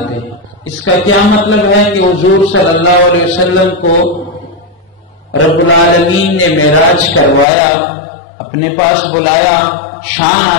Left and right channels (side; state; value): right; drops out; at 7.5 s